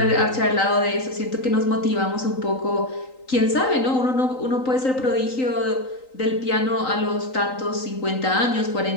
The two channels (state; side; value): late; right; 3.9 ms